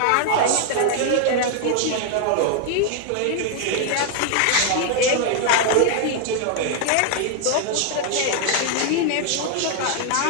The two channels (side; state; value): both; different; correlation 0.00